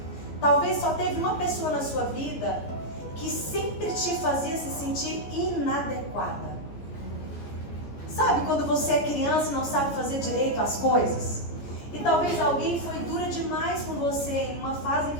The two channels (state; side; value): late; right; 14 ms